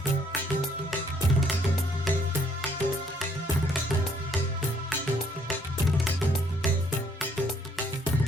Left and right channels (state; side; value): normal; both; correlation 0.66